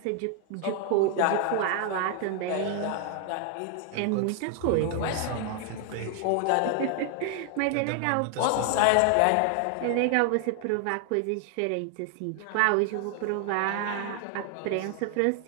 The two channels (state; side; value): different; both; correlation 0.00